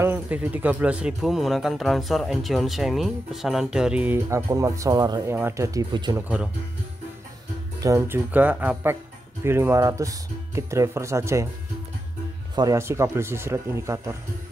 TV 13.000 menggunakan transfer Enjoon Semi, pesanan dari akun Mat Solar yang ada di Bojonegoro. Dan juga APEC B500 kit driver saja ya, variasi kabel sisir indikator.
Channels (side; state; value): both; normal; correlation 0.88